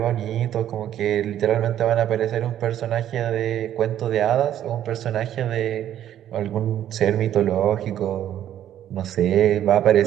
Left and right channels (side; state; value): left; quieter; 11.2 dB